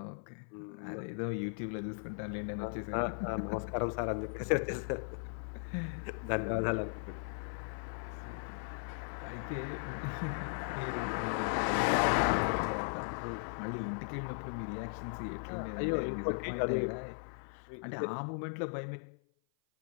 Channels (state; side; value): silent; right; 53 dB below the other